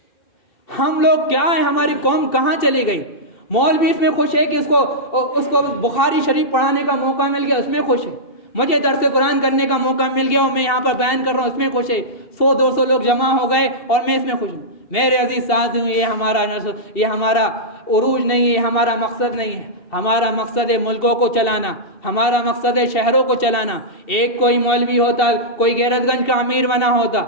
ہم لوگ کیا ہیں، ہماری قوم کہاں چلی گئی؟ مولوی اس میں خوش ہے کہ اس کو بخاری شریف پڑھانے کا موقع مل گیا، اس میں خوش ہے، مجھے درس قرآن کرنے کا موقع مل گیا اور میں یہاں پر بیان کر رہا ہوں، اس میں خوش ہے، 100-200 لوگ جمع ہو گئے اور میں اس میں خوش ہوں۔ میرے عزیز ساتھیوں، یہ ہمارا عروج نہیں ہے، ہمارا مقصد نہیں ہے، ہمارا مقصد ہے ملکوں کو چلانا، ہمارا مقصد ہے شہروں کو چلانا۔ ایک کوئی مولوی ہوتا، کوئی غیرت گنج کا امیر بنا ہوتا،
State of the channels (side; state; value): right; late; 2.7 ms